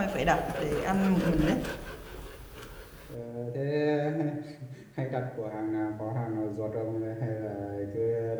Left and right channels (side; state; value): both; identical; correlation 1.00